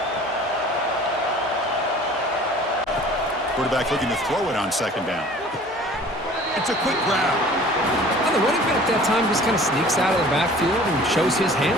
Quarterback looking to throw it on 2nd down. It's a quick grab. Well, the running back that time just kind of sneaks out of the backfield and shows his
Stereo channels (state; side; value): noise; left; hum, 29 dB below the sound